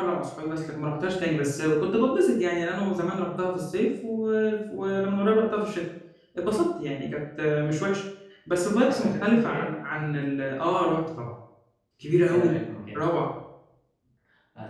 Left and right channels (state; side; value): identical; both; correlation 1.00